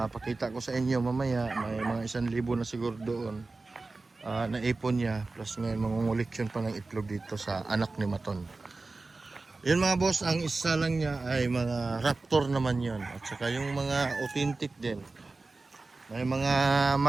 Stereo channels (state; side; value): quieter; left; 3.5 dB